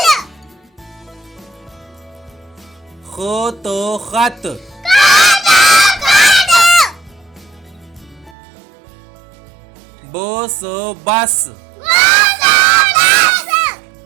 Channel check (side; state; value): left; drops out; at 8.3 s